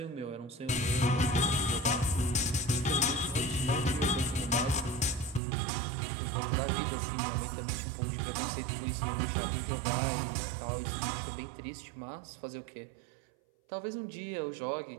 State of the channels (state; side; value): drops out; left; at 5.4 s